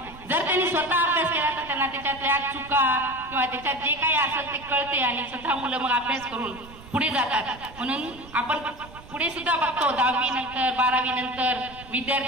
जर त्यांनी स्वतः अभ्यास केला तर त्यांना त्याच्यातल्या चुका किंवा त्याच्यात जे काही असेल ते कळते आणि स्वतः मुलं मग अभ्यास करून पुढे जातात। म्हणून आपण पुढे सुद्धा बघतो 10वी नंतर 12वी नंतर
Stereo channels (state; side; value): noise; right; rumble, 19 dB below the sound